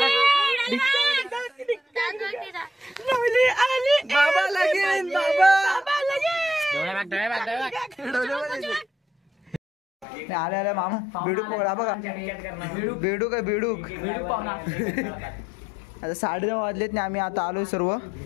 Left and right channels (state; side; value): drops out; right; at 10.1 s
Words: बाबा लगीन, बाबा आले आले मामा. बेडूक पकडा बघा. बेडूक आहे बेडूक. आता 9:30 वाजलेत ना. आम्ही आता आलोय सर्व.